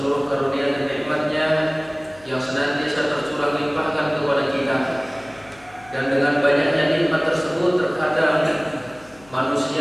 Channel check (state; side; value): noise; left; hum, 26 dB below the sound